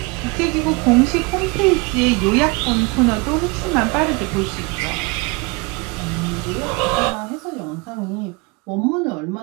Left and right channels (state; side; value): quieter; left; 27.6 dB